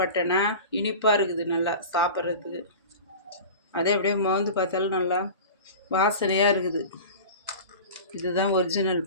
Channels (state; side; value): inverted; both; correlation -0.34